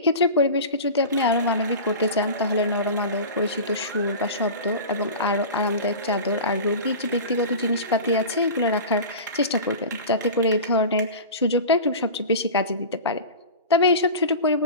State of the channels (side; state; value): both; inverted; correlation -0.32